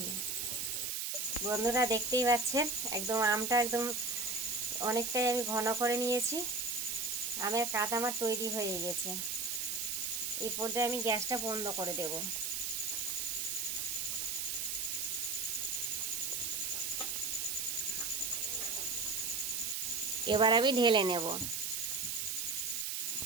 বন্ধুরা, দেখতেই পাচ্ছেন একদম আমটা একদম অনেকটাই আমি ঘন করে নিয়েছি। আমের কাঠ আমার তৈরি হয়ে গেছে। এই পর্যায়ে আমি গ্যাসটা বন্ধ করে দেব। এবার আমি ঢেলে নেব।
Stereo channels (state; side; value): noise; right; hiss, 1 dB below the sound